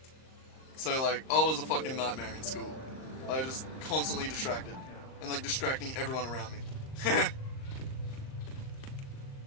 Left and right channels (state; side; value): late; right; 38 ms